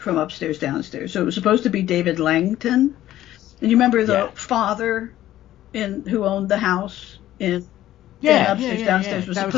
Upstairs Downstairs. So it was supposed to be David Langton. And you remember the father who owned the house in Upstairs Downstairs was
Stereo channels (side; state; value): right; quieter; 13.6 dB